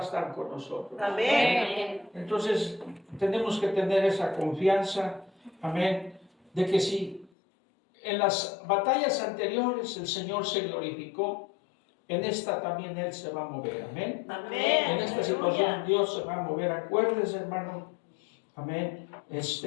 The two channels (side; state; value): right; drops out; at 7.3 s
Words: estar con nosotros. Amén. Entonces, tenemos que tener esa confianza, amén, de que si en las batallas anteriores el Señor se glorificó, en esta también Él se va a mover, amén. Amén. En esta situación Dios se va a mover. Acuérdese, hermano, amén,